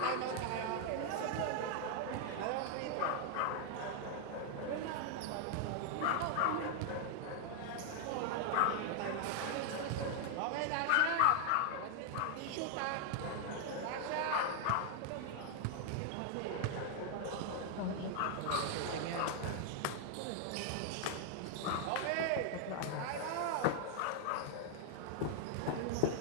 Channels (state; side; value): different; both; correlation 0.00